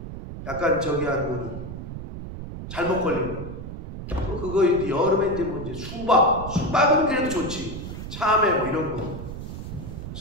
약간 저기 한 무는 잘못 걸리면 그거 이제 여름에 이제 뭐 이제 수박은 그래도 좋지. 참외 뭐 이런 거.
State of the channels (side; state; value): right; noise; rumble, 9 dB below the sound